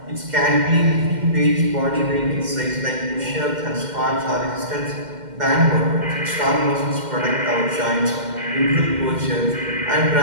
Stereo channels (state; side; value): late; left; 2.1 ms